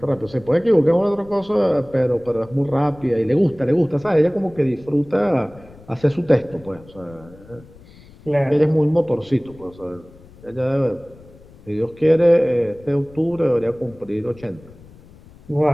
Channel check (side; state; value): left; noise; rumble, 23 dB below the sound